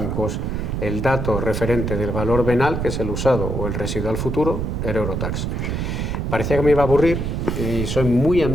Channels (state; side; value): noise; right; rumble, 2 dB below the sound